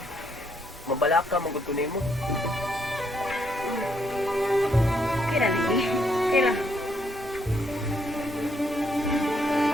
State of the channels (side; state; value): both; normal; correlation 0.73